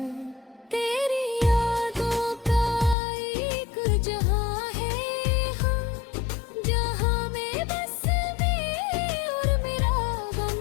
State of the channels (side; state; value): right; drops out; at 3.0 s